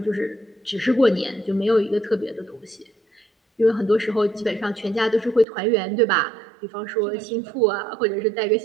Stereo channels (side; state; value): left; drops out; at 5.5 s